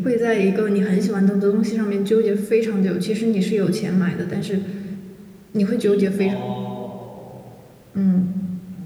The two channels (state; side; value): identical; both; correlation 1.00